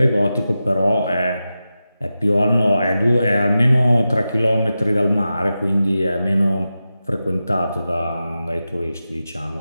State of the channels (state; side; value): inverted; both; correlation -0.92